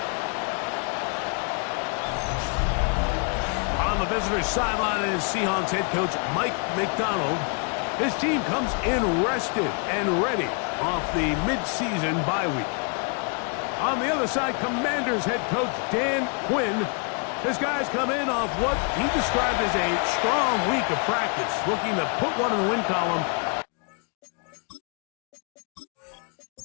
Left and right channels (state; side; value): quieter; right; 38.2 dB